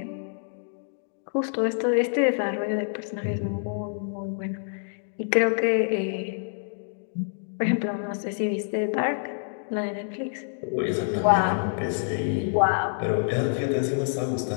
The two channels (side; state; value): right; silent; digital silence